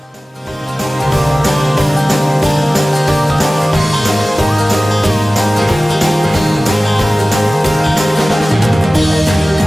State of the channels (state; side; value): normal; both; correlation 0.97